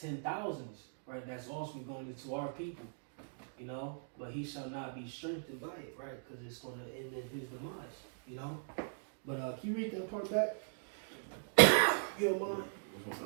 10,000s. Right, that's also going into our people. You know, but he shall not be strengthened by it, right? Because it's going to end in his demise. You know. But can you read that part back? You don't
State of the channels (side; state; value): left; silent; digital silence